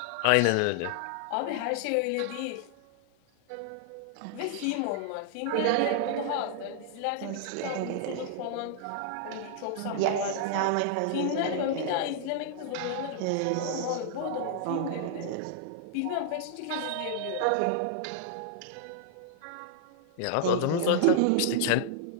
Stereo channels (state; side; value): different; both; correlation -0.01